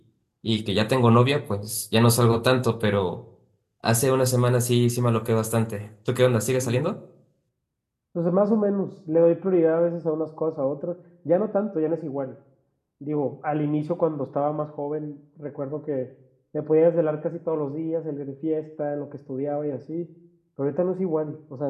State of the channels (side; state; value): both; identical; correlation 1.00